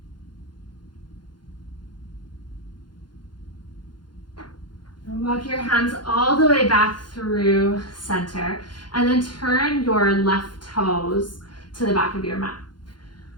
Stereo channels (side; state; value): right; late; 0.71 ms